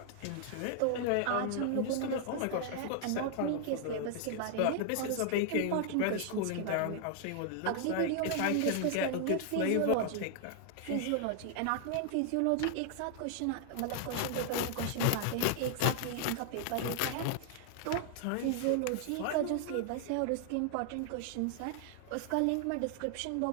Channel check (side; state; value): both; different; correlation 0.00